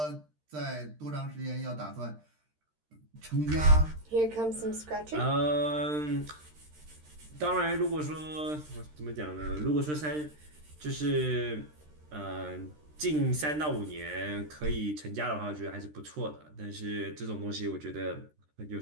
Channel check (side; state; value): left; late; 13 ms